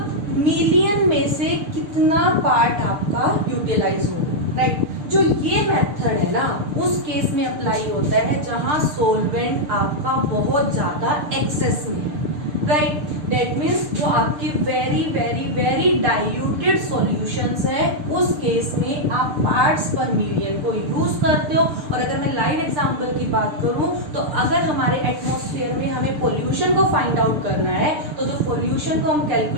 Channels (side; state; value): left; late; 6.7 ms